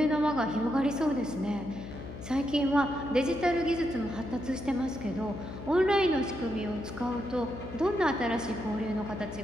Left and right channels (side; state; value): left; noise; hum, 11 dB below the sound